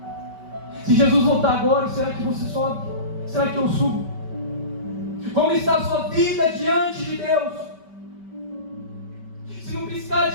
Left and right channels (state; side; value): late; left; 5.2 ms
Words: Se Jesus voltar agora, será que você sobe? Será que eu subo? Como está a sua vida diante de Deus? Se num piscar